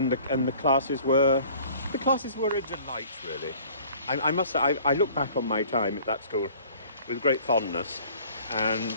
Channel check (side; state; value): both; inverted; correlation -0.51